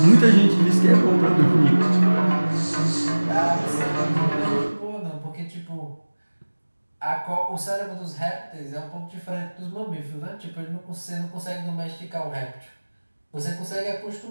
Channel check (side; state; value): both; inverted; correlation -1.00